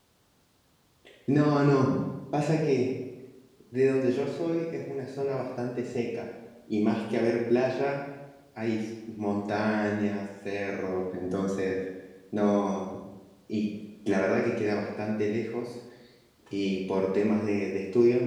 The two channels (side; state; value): both; identical; correlation 1.00